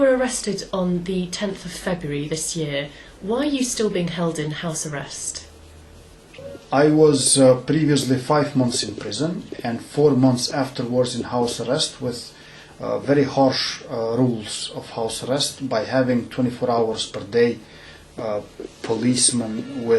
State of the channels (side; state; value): both; identical; correlation 1.00